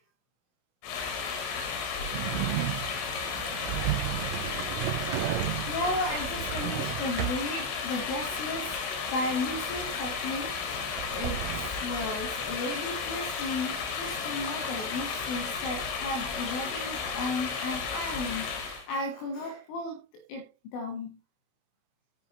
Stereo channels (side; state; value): right; late; 16 ms